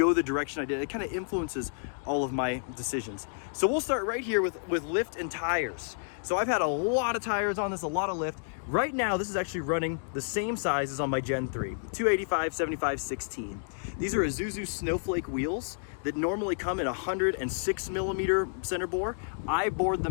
the direction I did. It kind of influences all of my decisions. So we'll start right here with lift and tires. So I've had a lot of tires on this, a lot of lift. Right now, this is actually running the same size as on my Gen 3, 285, 75, 16. These are Isuzu Snowflake wheels that normally come in 106 millimeter center bore. I bored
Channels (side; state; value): right; silent; digital silence